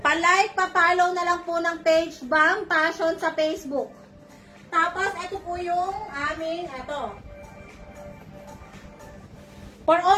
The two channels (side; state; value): both; identical; correlation 1.00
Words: Palike, pa-follow na lang po ng page BAM Fashion sa Facebook. Tapos, ito po yung aming, ito. For